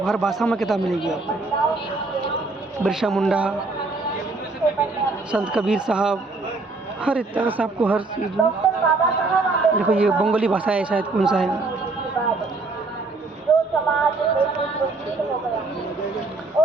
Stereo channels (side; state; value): left; quieter; 3.5 dB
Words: हर भाषा में किताब मिलेगी आपको। बिरसा मुंडा, संत कबीर साहब, हर एक तरह से आपको हर चीज़ में। देखो ये बंगाली भाषा है शायद, कौन सा है,